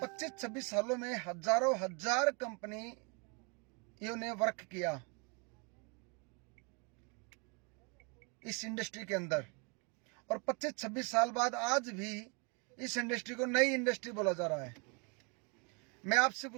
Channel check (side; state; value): left; quieter; 33.6 dB